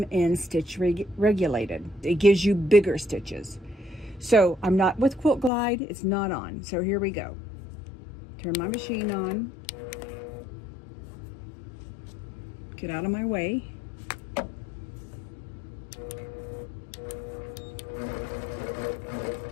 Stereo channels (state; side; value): drops out; right; at 5.5 s